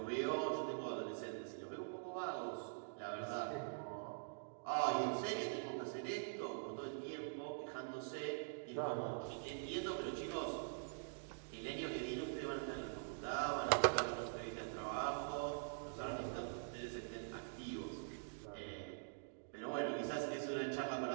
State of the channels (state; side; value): silent; left; digital silence